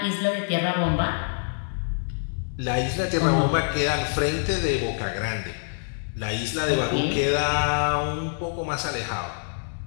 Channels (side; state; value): right; silent; digital silence